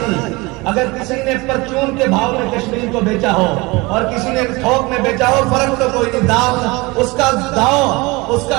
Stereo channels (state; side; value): quieter; left; 24.0 dB